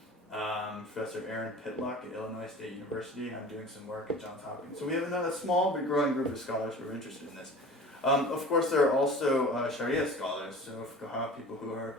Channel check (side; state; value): both; normal; correlation 0.41